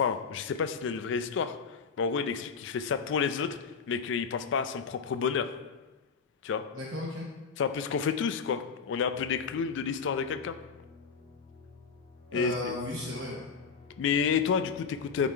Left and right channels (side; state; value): right; quieter; 5.7 dB